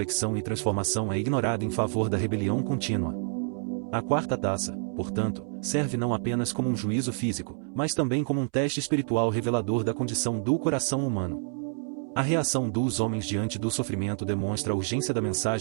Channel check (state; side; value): silent; left; 59 dB below the other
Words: e transformação é ignorada em favor da rebelião contínua. A quarta taça, portanto, serve não apenas como um juízo físico, mas também como um teste espiritual revelador da condição do coração humano. A reação dos homens diante do sofrimento demonstra a urgência da